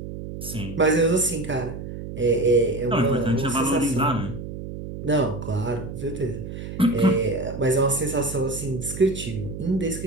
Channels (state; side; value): noise; right; hum, 9 dB below the sound